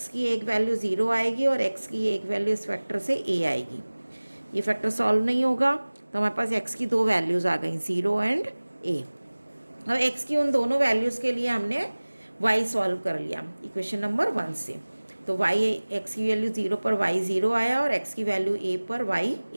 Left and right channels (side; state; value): both; inverted; correlation -1.00